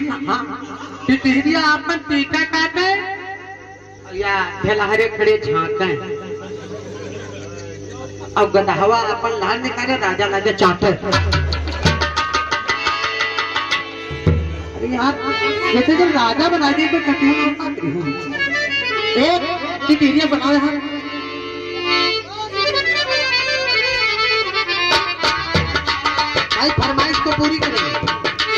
टिटिहिरिया अपन टीका काटे या ढेलाहरे खड़े झांके। अब गदहवा अपन लाल निकाले राजा लगे चाटे। यार जैसे जब राजा बना दिए तो कटी हूँ एक टिटिहिरिया बनाओ यार। भाई फरमाइश को पूरी करेंगे।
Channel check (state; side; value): identical; both; correlation 1.00